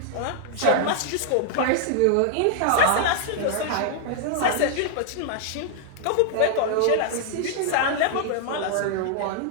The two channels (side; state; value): both; different; correlation -0.01